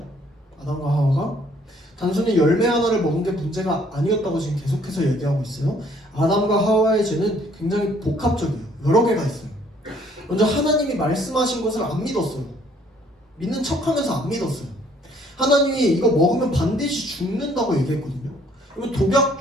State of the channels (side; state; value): both; normal; correlation 0.62